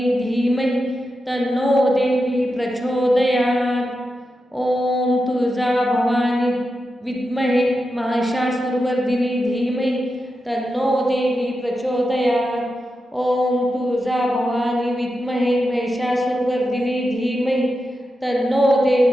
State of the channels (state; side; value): normal; both; correlation 0.89